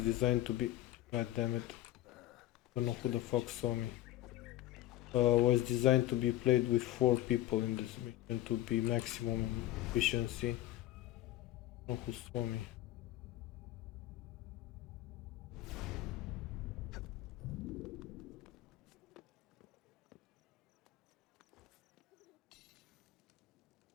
to be. God damn it! Don't know who the fuck saw me. Was designed to be played with 4 people in this mission to be maximum efficiency. Don't know who saw me.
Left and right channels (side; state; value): right; quieter; 14.9 dB